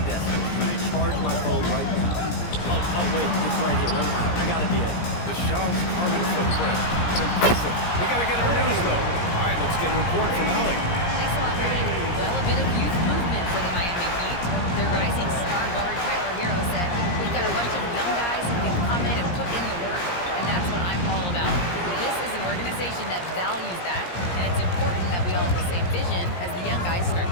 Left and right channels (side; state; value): right; late; 17 ms